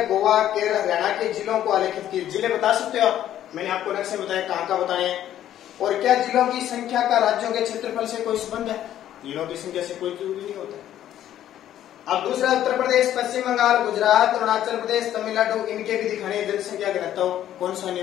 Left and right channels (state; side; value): quieter; right; 11.7 dB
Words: गोवा, केरल, हरियाणा के जिलों को आलेखित किए। जिले बता सकते हो आप, मैंने आपको नक्शे बताया कहाँ का बताए हैं। और क्या जिलों की संख्या का राज्यों के क्षेत्रफल से कोई संबंध है? जिलों की संख्या से कोई जरूरी नहीं होता। अब दूसरा, उत्तर प्रदेश, पश्चिम बंगाल, गुजरात, अरुणाचल प्रदेश, तमिलनाडु, इनके भी दिखाने जनसंख्या घनत्व कौन सा